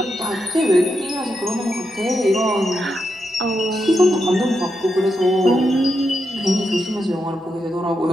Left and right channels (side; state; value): both; normal; correlation 0.85